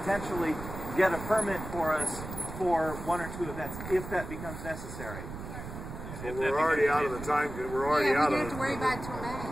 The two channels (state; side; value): noise; right; rumble, 9 dB below the sound